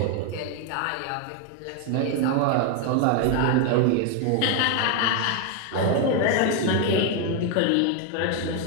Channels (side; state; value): both; different; correlation 0.01